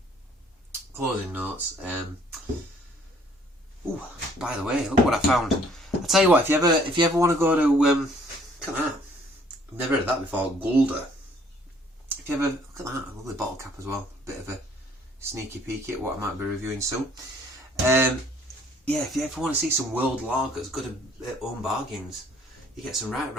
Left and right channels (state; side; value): normal; both; correlation 0.60